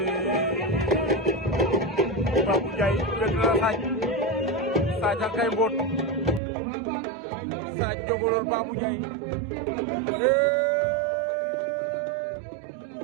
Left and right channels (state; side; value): drops out; left; at 6.4 s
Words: Babou Ndiaye wet na Sadio kay mbot Sadio Bolol Babou Ndiaye